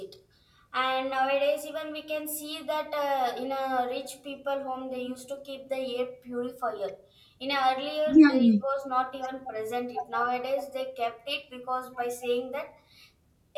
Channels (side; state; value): both; identical; correlation 1.00